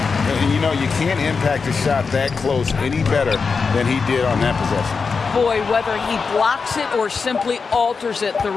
And, you know, you can't impact a shot that close any better than he did on that possession. Boy, whether he blocks it or simply alters it, the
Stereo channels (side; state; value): right; quieter; 5.0 dB